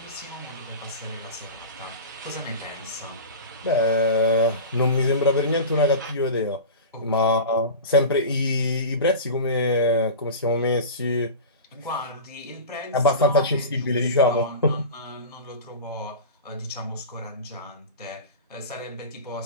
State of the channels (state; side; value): inverted; both; correlation -0.31